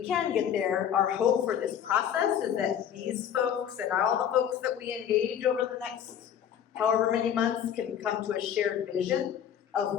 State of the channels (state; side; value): quieter; right; 9.1 dB